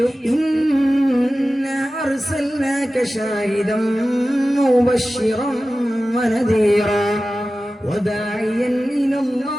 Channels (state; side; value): normal; both; correlation 0.95